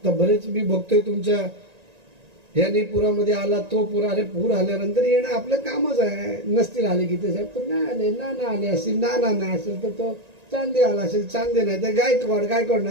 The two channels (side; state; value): left; late; 1.9 ms